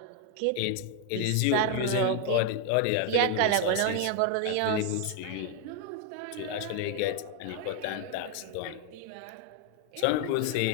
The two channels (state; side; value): different; both; correlation 0.01